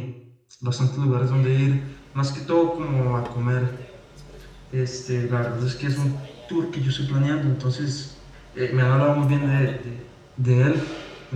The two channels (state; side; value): identical; both; correlation 1.00